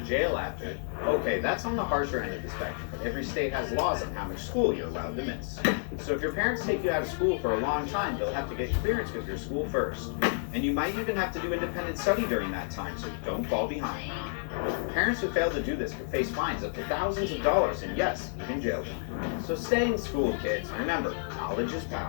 after. Okay, that's on the harsher end of the spectrum, but every state has laws on how much school you're allowed to miss. So if your parents take you out of school for a long time, they'll have to get clearance with your school first. And you might even have to do independent study during that time, so you don't fall behind. Parents who fail to do this could face fines up to thousands of dollars, and yes, even jail time. So stay in school, kids. Remember, knowledge is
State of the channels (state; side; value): silent; right; digital silence